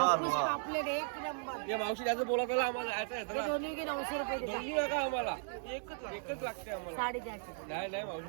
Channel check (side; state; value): left; silent; digital silence